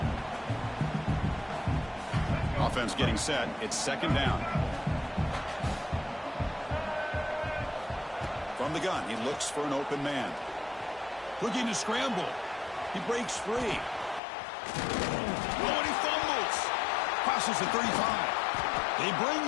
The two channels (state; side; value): drops out; right; at 14.2 s